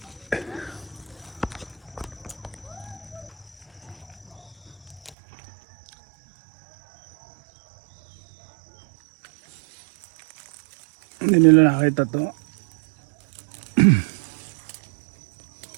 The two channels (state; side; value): drops out; left; at 5.2 s